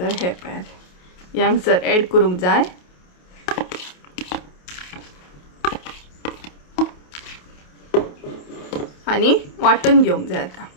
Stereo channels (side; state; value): right; late; 28 ms